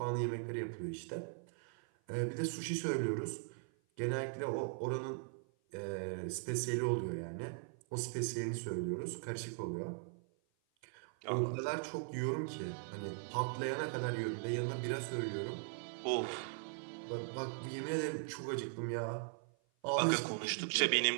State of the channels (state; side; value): silent; left; 51 dB below the other